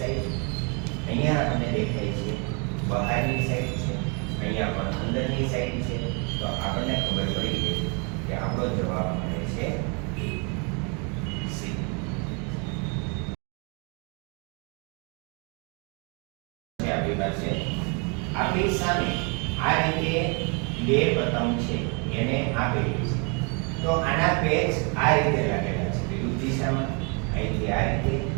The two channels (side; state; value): left; quieter; 34.4 dB